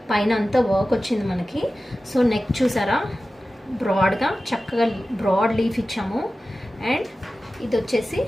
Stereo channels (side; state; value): both; normal; correlation 0.95